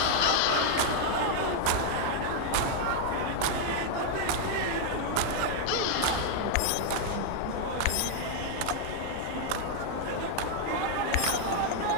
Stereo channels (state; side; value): different; both; correlation 0.00